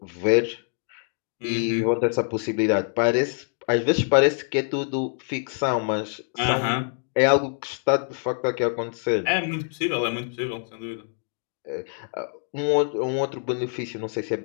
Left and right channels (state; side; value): silent; right; 57 dB below the other